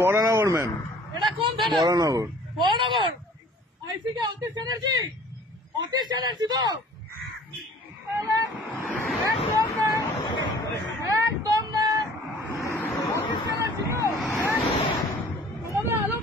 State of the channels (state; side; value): normal; both; correlation 0.51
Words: বরানগর ম্যাম। এটা কোন থানা? বরানগর। বরানগর আইসি কে অতীশ চ্যাটার্জি? অতীশ চ্যাটার্জি তো একদম না, একদম না। অতীশ চ্যাটার্জি তো আমাদের আলোক